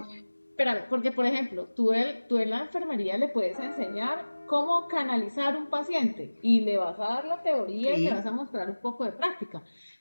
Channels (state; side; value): inverted; both; correlation -1.00